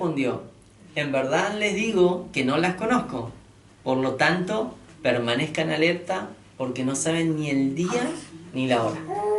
en verdad les digo que no las conozco. Por lo tanto, permanezcan alerta porque no saben ni el día ni la hora.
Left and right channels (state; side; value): identical; both; correlation 1.00